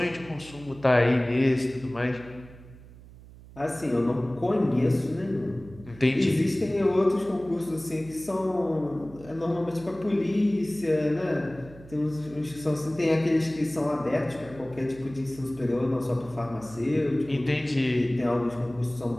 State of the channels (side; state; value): right; noise; hum, 19 dB below the sound